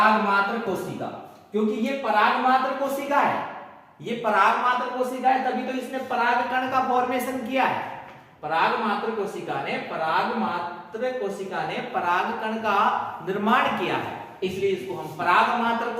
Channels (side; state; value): both; identical; correlation 1.00